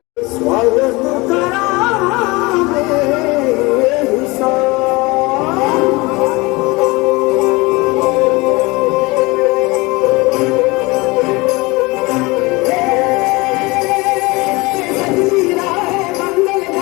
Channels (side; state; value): right; quieter; 24.0 dB